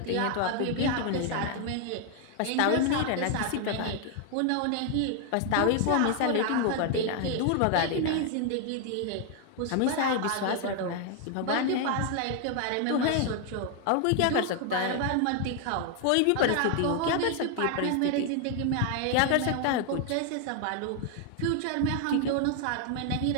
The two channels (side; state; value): both; different; correlation 0.00